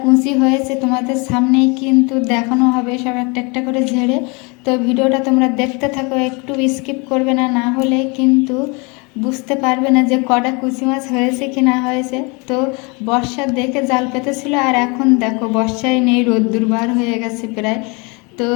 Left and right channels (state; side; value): quieter; right; 29.6 dB